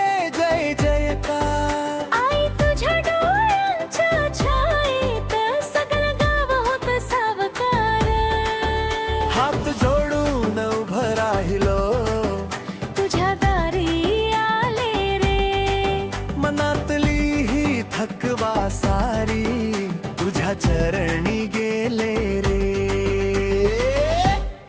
जय जयकार आई तुझ्या डोळ्यांच्या छायेत सगळं गाव होत सावकार हात जोडून उभं राहिलो तुझ्या दारी आले रे मनातली ही थकवा सारी तुझ्या चरणी गेले रे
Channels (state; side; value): identical; both; correlation 1.00